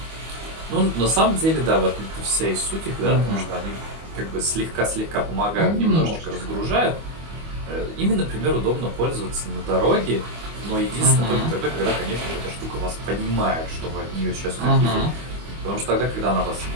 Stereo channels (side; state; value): left; late; 25 ms